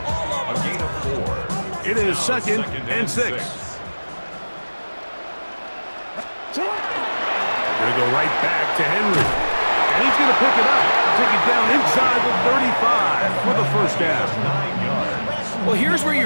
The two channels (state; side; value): inverted; both; correlation -1.00